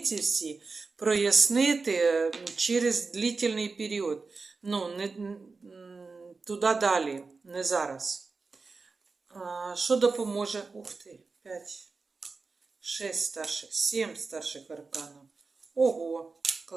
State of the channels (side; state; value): left; quieter; 4.2 dB